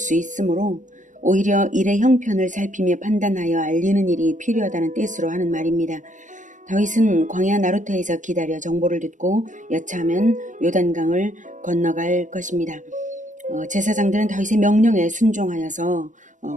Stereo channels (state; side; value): late; left; 0.37 ms